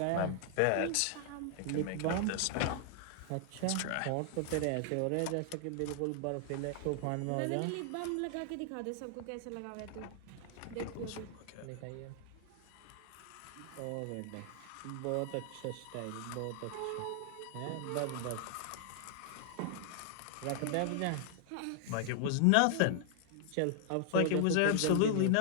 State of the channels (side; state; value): both; different; correlation 0.00